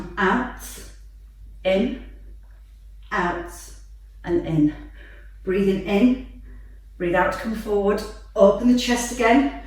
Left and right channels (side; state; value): both; identical; correlation 1.00